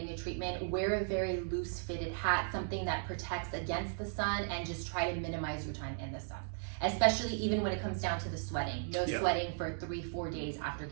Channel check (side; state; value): left; silent; digital silence